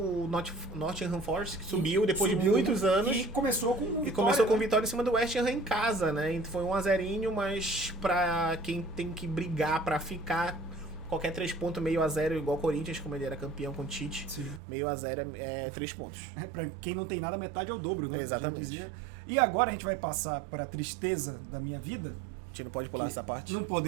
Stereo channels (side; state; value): left; drops out; at 14.6 s